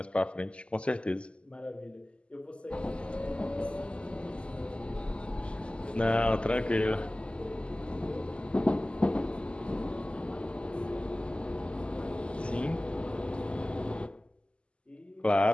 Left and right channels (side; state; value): right; late; 0.053 ms